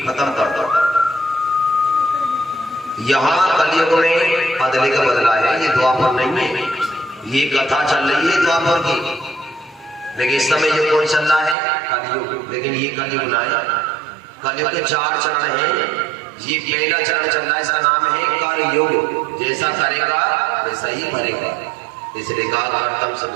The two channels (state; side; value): drops out; left; at 11.6 s